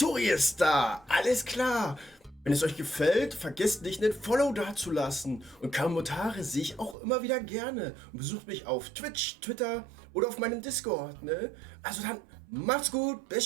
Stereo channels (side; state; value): left; drops out; at 7.0 s